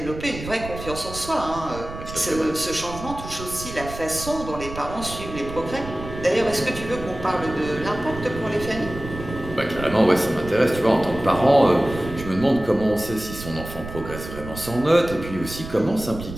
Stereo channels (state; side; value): noise; right; rumble, 11 dB below the sound